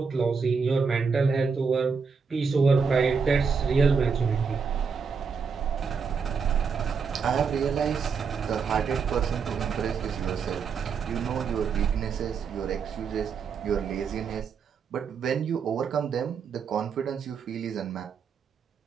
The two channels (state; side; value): quieter; left; 5.7 dB